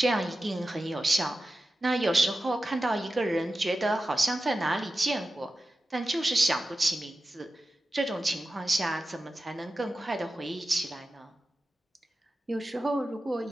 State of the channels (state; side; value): normal; both; correlation 0.93